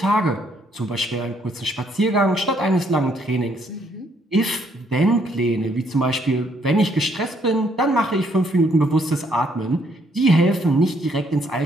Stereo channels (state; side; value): normal; both; correlation 0.69